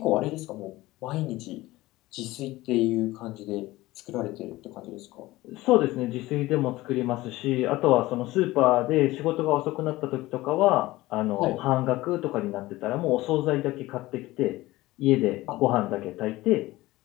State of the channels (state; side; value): quieter; right; 18.4 dB